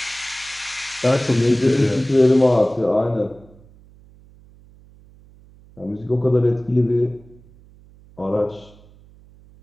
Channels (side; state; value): right; noise; hum, 26 dB below the sound